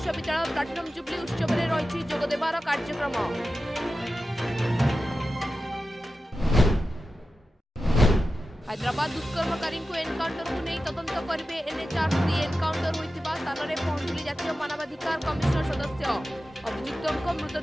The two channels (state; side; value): normal; both; correlation 0.93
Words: प्लाटिनम जुबली उत्सव में रही जोगदेवार कार्यक्रम। हैदराबाद दुष्कर्मकारी को एनकाउंटर को नहीं तदंत करेंगे एनएचआरसी। एनकाउंटर होता स्थान में पहुंचले जातीय मानवाधिकार कमिशन सदस्य। अभियुक्तों